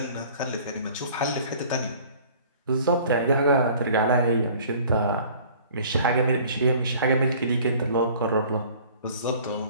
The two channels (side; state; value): both; inverted; correlation -0.50